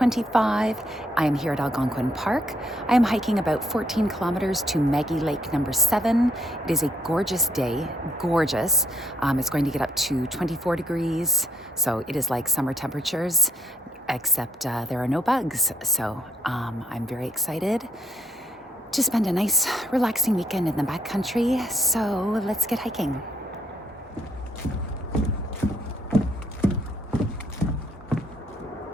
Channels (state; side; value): normal; both; correlation 0.71